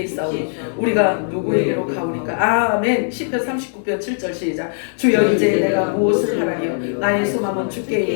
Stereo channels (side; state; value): right; silent; digital silence